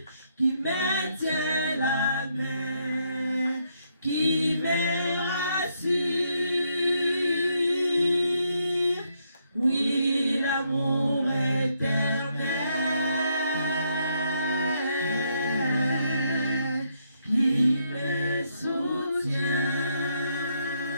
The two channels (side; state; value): both; inverted; correlation -0.75